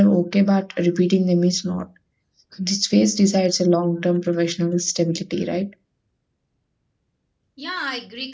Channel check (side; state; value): both; identical; correlation 1.00